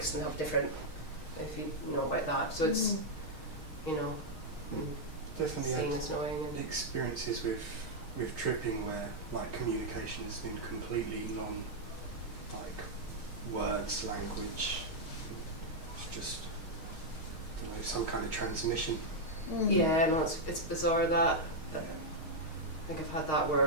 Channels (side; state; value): right; late; 6.4 ms